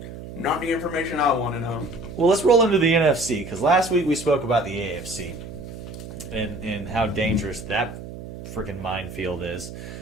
Not the information I want to know. Well, let's roll into the NFC because last week we spoke about the AFC and how dangerous that freaking minefield is.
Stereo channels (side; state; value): right; noise; hum, 12 dB below the sound